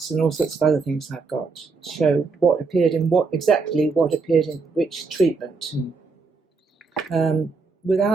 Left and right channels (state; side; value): quieter; left; 4.4 dB